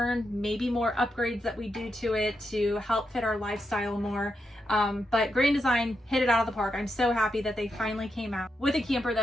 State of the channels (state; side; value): normal; both; correlation 0.84